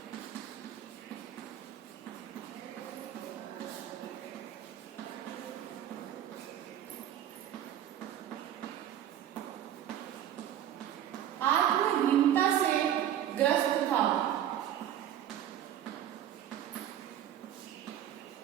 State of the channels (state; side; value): quieter; left; 10.9 dB